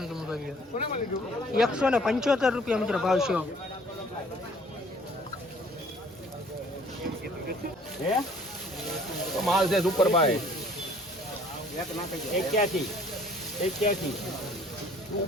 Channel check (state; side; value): normal; both; correlation 0.56